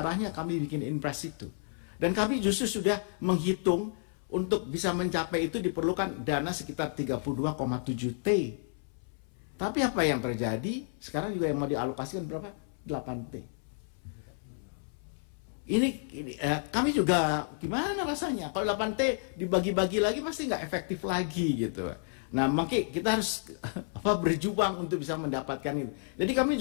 kami bikin Inpres itu. Dan kami justru sudah menghitung untuk bisa mencapai itu diperlukan dana sekitar 32,7 T. Tapi apa yang terjadi? Sekarang juga yang mau dialokasikan berapa? 8 T. Ini kami juga gimana rasanya kalau 8T dibagi-bagi lagi pasti nggak efektif lagi gitu. Nah makanya kita harus berjuang untuk bisa mendapatkan itu. Jadi kami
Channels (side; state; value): right; silent; 57 dB below the other